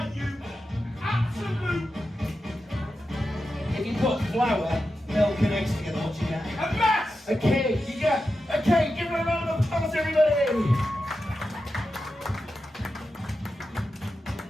you absolute If you put flour, milk, and eggs together, what you get? a mess! A cake! You get a cake! Give her a round of applause, everybody!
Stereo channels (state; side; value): normal; both; correlation 0.90